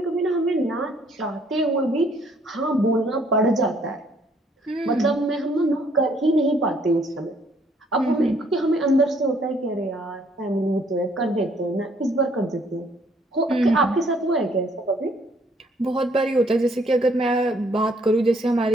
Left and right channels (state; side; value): normal; both; correlation 0.65